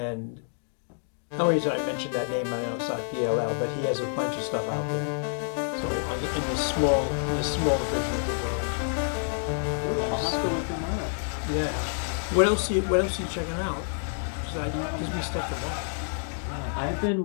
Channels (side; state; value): right; silent; digital silence